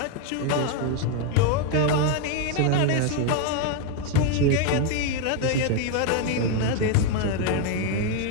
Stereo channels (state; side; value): different; both; correlation 0.01